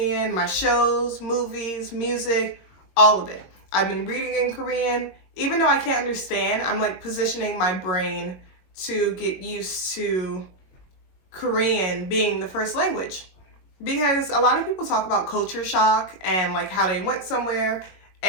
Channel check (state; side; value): late; right; 22 ms